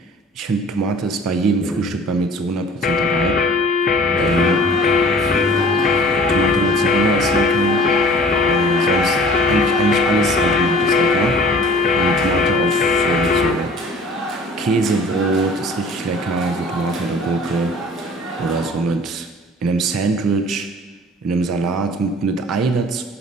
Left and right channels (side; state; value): both; normal; correlation 0.47